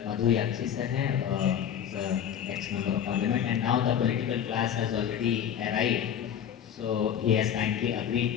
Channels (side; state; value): right; quieter; 9.0 dB